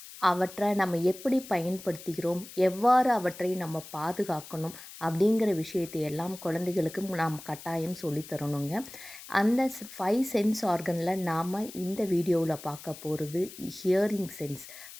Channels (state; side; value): noise; left; hiss, 15 dB below the sound